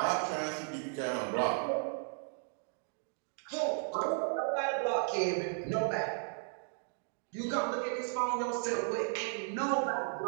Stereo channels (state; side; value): silent; left; 54 dB below the other